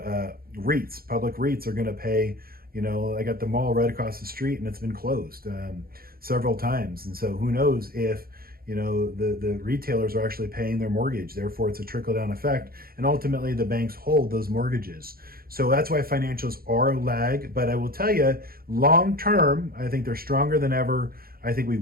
public REITs are going to pay. I got the mall right across the street and it's been closed several times, and so who knows if the retailers are actually paying their mortgage. Therefore, it's a trickle-down effect, and ultimately the banks hold those mortgages. So that's why financials are a lag. But I will tell you, long-term, I think they're stronger than ever. I think we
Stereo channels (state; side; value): late; left; 0.43 ms